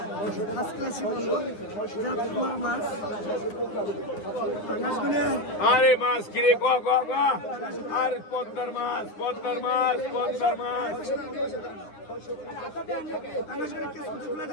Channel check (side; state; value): right; late; 9.8 ms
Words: 5 ক্লাসই বলবো। জাতকুমার মাছ, পাঙ্গাসগুলো আরে মাছ কিরে গো গো গো, আর পদ্মার মাছ পদ্মার মাছ পদ্মার মাছ